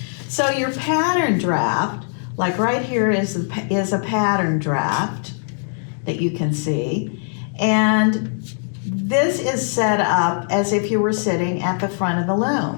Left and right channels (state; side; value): silent; right; digital silence